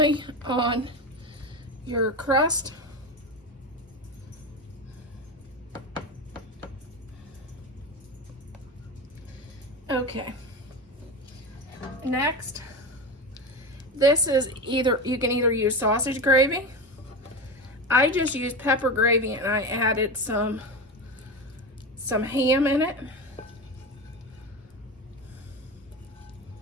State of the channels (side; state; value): both; normal; correlation 0.22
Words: on your crust. Okay. Next, this is you can either use sausage gravy. I just used pepper gravy and I added some ham in it.